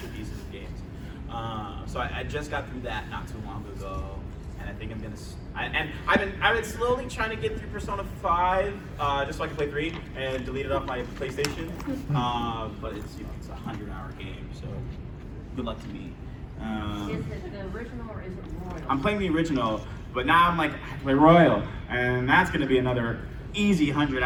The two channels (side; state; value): both; identical; correlation 1.00